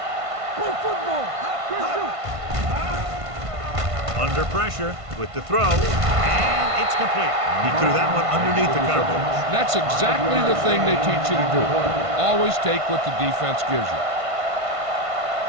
Play football. Under pressure with the throw. And it's complete. He threw that one underneath the coverage. That's exactly the thing they teach you to do. Always take what the defense gives you.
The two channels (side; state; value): left; late; 1.5 ms